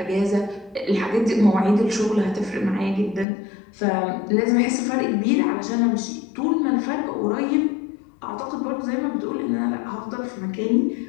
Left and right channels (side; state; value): right; drops out; at 3.2 s